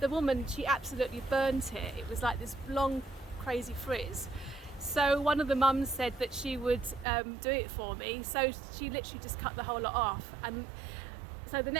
woman, she absolutely burnt it. It was like this long, crazy frizz. So one of the mums said that she would do it for me. So she literally just cut the whole lot off. And so the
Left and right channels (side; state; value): left; drops out; at 7.1 s